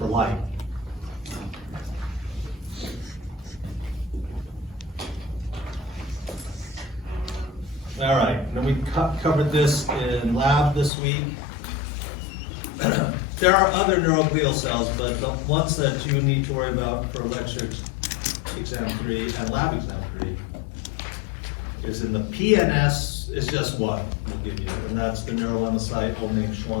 light. All right, then we covered this in lab this week. There are other neuroglial cells, but the ones that you need to worry about for lecture exam 3 and lab exam 3 is in the PNS, is just one we'll give you, and that's the neurolemmacyte, old name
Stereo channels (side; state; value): right; drops out; at 10.9 s